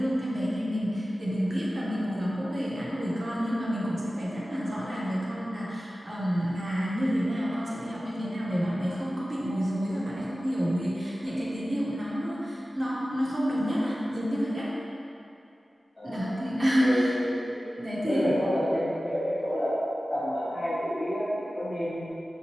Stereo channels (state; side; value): normal; both; correlation 0.96